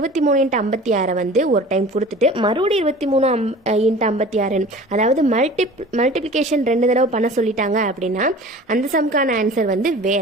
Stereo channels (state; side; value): normal; both; correlation 0.42